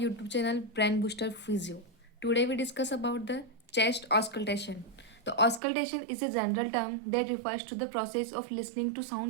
channel Brain Booster Physio. Today we discuss about the chest auscultation. The auscultation is a general term that refers to the process of listening to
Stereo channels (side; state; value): left; drops out; at 5.6 s